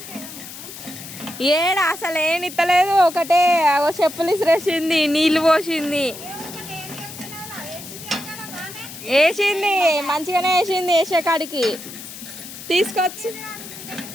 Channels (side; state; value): left; noise; hiss, 13 dB below the sound